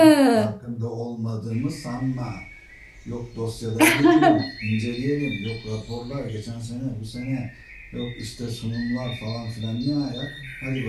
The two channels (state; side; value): identical; both; correlation 1.00